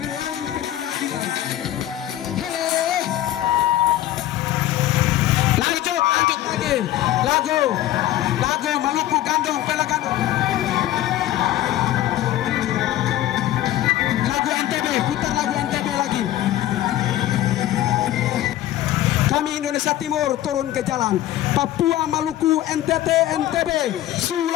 ketidakadilan. Lanjut lagi lagu Maluku Gandong, Pela Gandong, lagu NTB, putar lagu NTB lagi. Kami Indonesia Timur turun ke jalan. Papua, Maluku, NTT, NTB,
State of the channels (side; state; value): right; quieter; 13.6 dB